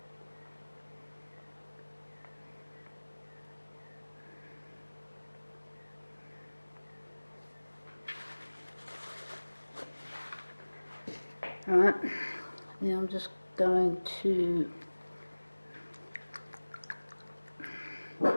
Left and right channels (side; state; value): both; inverted; correlation -1.00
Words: Alright, now I'm just going to